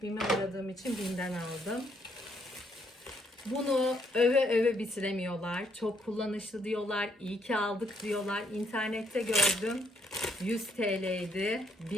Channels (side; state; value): both; normal; correlation 0.72